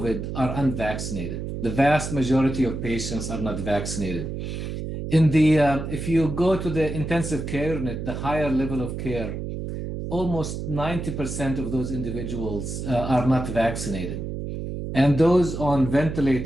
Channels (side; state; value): right; noise; hum, 5 dB below the sound